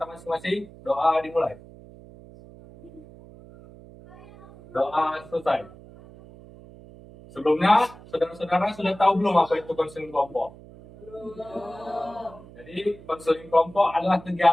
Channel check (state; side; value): noise; right; hum, 20 dB below the sound